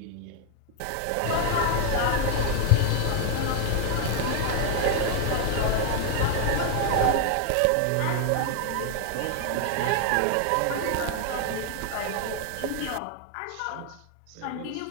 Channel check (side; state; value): both; different; correlation 0.00